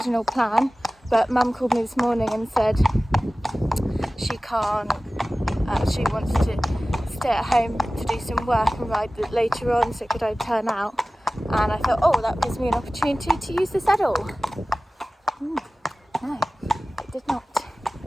plan, but mum called me this morning and said she can't, she wants to stay at home to do some work and ride later on, so could I turn out? And I thought, oh, that gives me an opportunity to use the saddle. No, it did not.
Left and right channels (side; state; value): both; normal; correlation 0.97